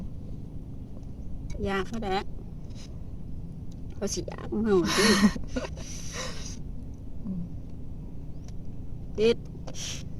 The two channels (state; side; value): identical; both; correlation 1.00